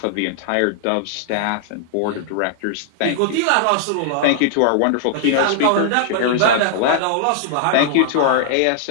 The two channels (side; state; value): both; different; correlation -0.01